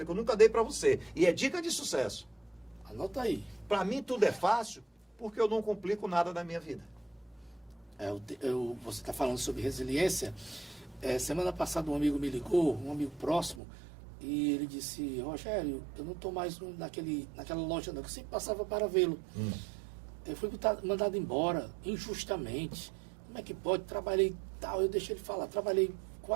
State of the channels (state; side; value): drops out; left; at 13.6 s